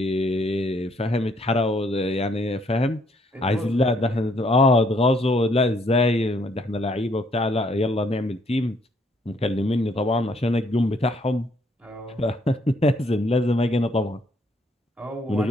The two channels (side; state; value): both; normal; correlation 0.68